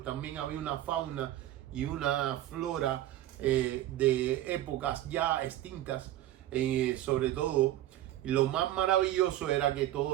también había una fauna y una flora de épocas ya extintas, sobre todo. Y lo más maravilloso era que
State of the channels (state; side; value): quieter; left; 13.7 dB